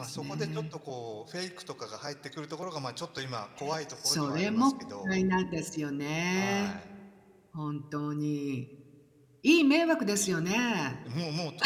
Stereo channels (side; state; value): both; identical; correlation 1.00